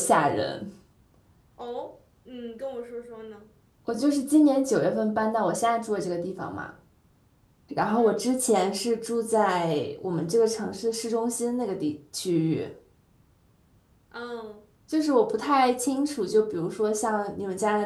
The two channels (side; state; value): both; identical; correlation 1.00